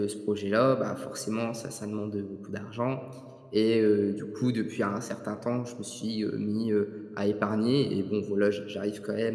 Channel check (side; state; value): both; identical; correlation 1.00